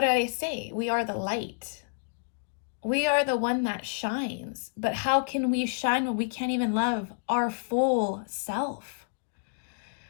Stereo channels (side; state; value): right; silent; digital silence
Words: did I say? We are the light. We are the one that shines. But how can we shine when we can't even love our full self?